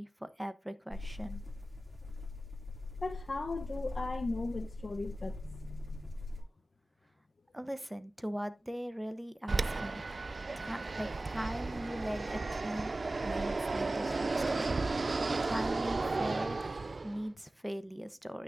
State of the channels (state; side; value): normal; both; correlation 0.96